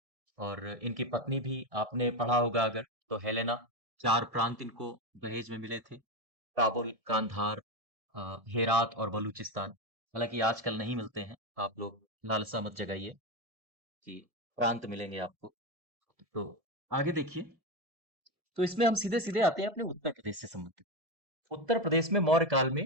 और इनकी पत्नी भी आपने पढ़ा होगा अगर, तो हेलेना। 4 प्रांत इनको दहेज में मिले थे, काबुल, कांधार, हेरात और बलूचिस्तान। हालांकि आजकल नहीं मिलते हैं, आप लोग लालसा मत जगाइए कि प्रांत मिलेंगे आपको। तो आगे देखिए, तो इसमें हम सीधे सीधे आते हैं अपने उत्तर प्रदेश से संबंधित। उत्तर प्रदेश में मौर्य काल में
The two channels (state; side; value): late; left; 1.6 ms